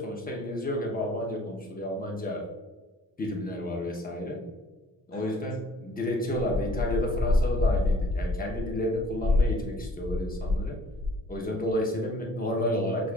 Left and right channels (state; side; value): normal; both; correlation 0.55